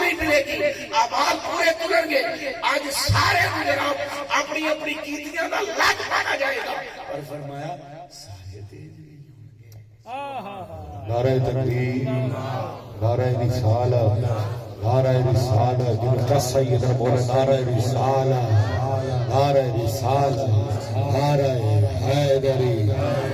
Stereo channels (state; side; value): identical; both; correlation 1.00